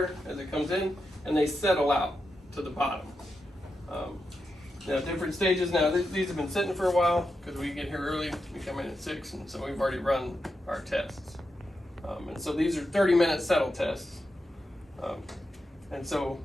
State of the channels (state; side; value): normal; both; correlation 0.87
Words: as it comes in, and they settle out to the bottom. Now, different stages. Now, these have been sitting for a while because we get here early. We come in at 6, and so we've already run our tests. And so these are 30-minute settle tests. And so